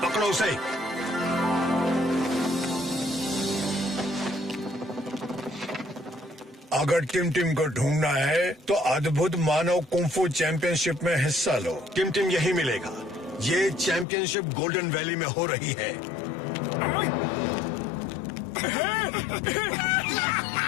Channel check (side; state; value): right; drops out; at 14.1 s